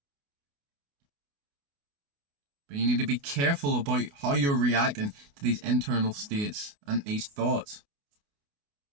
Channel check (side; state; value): left; late; 28 ms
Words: But you need to be careful about how you're reacting to these internal states and these thoughts.